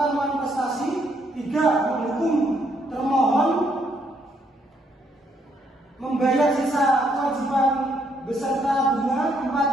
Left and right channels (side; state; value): both; normal; correlation 0.72